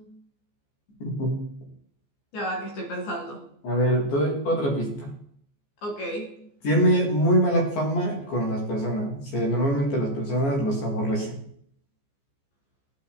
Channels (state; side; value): late; right; 14 ms